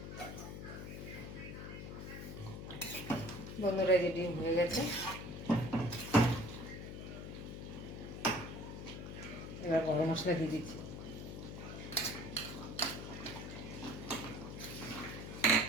বন্ধুরা, যে ডিম হয়ে গেছে, এবার গরম মশলা দিয়ে দিচ্ছি।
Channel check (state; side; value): noise; left; hum, 8 dB below the sound